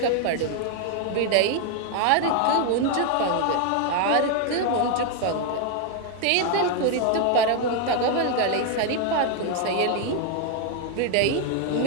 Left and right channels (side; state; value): both; different; correlation 0.00